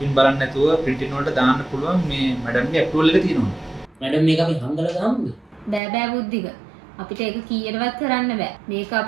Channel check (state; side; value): drops out; left; at 5.8 s